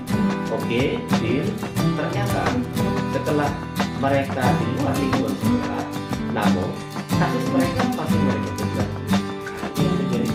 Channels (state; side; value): identical; both; correlation 1.00